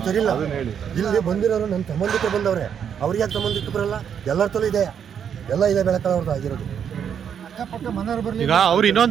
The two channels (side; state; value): left; quieter; 8.1 dB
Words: ಸರಿಯಿಲ್ಲ. ಇಲ್ಲಿ ಬಂದಿರೋರು ನನ್ನ ಸಂಬಂಧಿಕರು ಬಂದವ್ರೆ, ಅವ್ರಿಗೆ ಯಾಕೆ ಸಂಬಂಧಿಕರು ಬರಲ್ಲ? ಎಲ್ಲರ ತಲೂ ಇದೆ, ಎಲ್ಲ ಇದೆ ಬೆಳಕಳವ್ರದ್ದು ಆಗಿರೋದು. ಈಗ ಅವ್ರು